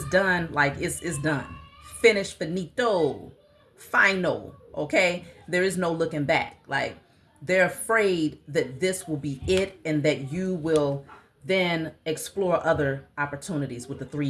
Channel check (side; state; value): both; identical; correlation 1.00